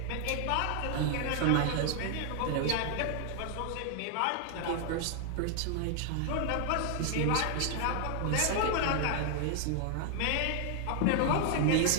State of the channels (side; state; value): both; different; correlation 0.00